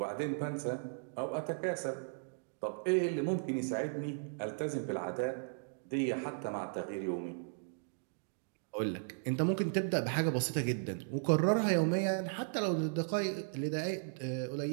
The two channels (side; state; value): left; silent; digital silence